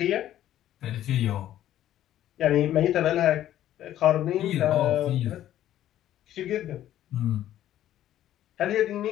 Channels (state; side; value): quieter; right; 12.4 dB